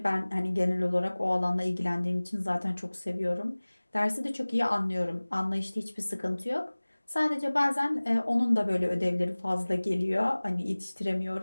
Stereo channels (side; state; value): both; inverted; correlation -1.00